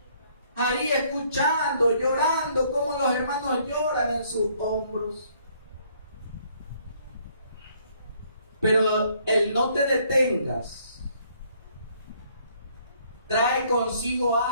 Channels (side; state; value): both; inverted; correlation -0.65